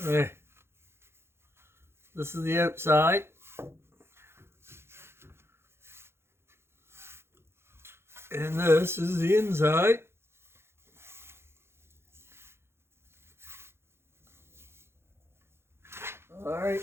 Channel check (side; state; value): left; late; 0.12 ms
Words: Okay. This is the outside. And this is the inside. All